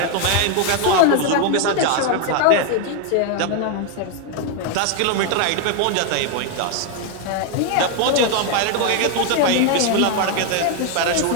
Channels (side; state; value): both; different; correlation 0.01